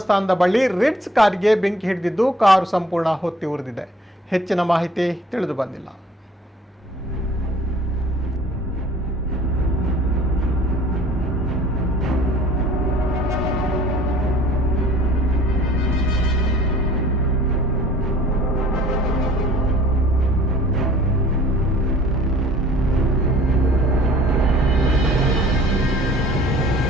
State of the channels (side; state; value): both; normal; correlation 0.52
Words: ಬಳಿ ರಿಟ್ಸ್ ಕಾರಿಗೆ ಬೆಂಕಿ ಹಿಡಿದಿದ್ದು ಕಾರು ಸಂಪೂರ್ಣ ಹೊತ್ತಿ ಉರಿದಿದೆ. ಹೆಚ್ಚಿನ ಮಾಹಿತಿ ತಿಳಿದು ಬಂದಿಲ್ಲ.